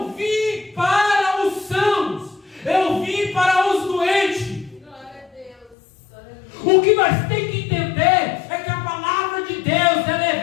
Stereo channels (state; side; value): drops out; right; at 5.8 s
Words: vim para os sãos, eu vim para os doentes. O que nós temos que entender é que a palavra de Deus ela é